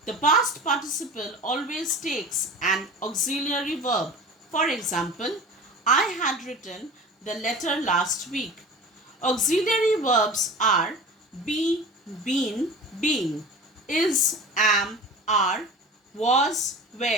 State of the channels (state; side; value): normal; both; correlation 0.37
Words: The past participle always takes an auxiliary verb. For example, I had written the letter last week. Auxiliary verbs are be, been, being, is, am, are, was,